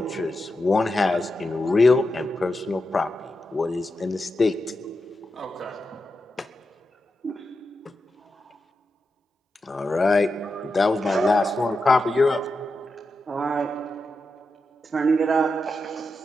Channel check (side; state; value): both; normal; correlation 0.88